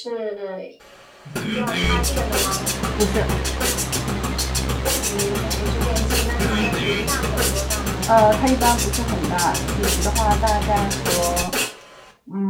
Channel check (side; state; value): both; identical; correlation 1.00